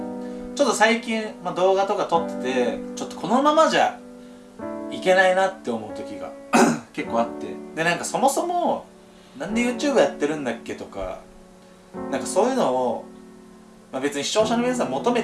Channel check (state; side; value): identical; both; correlation 1.00